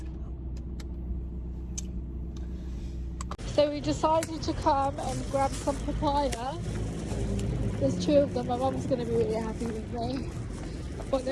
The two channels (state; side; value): identical; both; correlation 1.00